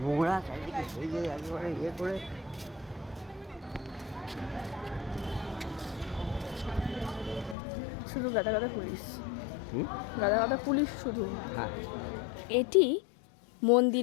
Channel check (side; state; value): right; drops out; at 7.6 s